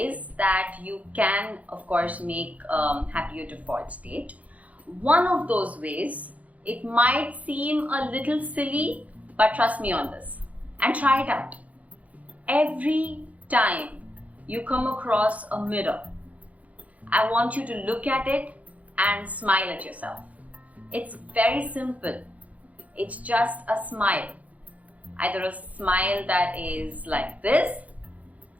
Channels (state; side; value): late; left; 0.070 ms